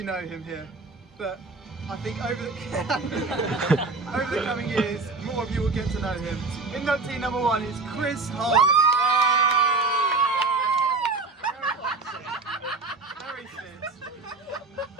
know him here, but I think over the coming years, more of you will get to know him. Inductee number one is Chris Harley. Very fit.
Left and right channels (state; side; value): quieter; left; 3.8 dB